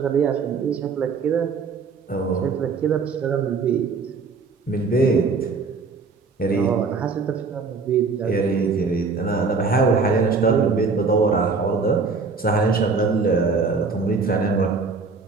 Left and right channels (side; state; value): left; quieter; 4.6 dB